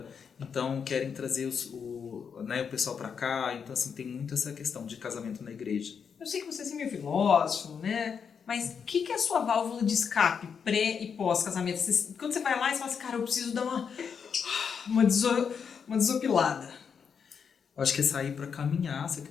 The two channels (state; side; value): quieter; right; 6.7 dB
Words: então querem trazer o pessoal para cá. Então, assim, tem muito essa questão de casamento na igreja. Eu sei que você é meio filósofo, né? Mas o que é a sua válvula de escape pré e pós-casamento? Quando você vai lá e você fala assim, cara, eu preciso dar uma desopilada. Acho que é sair para caminhar, você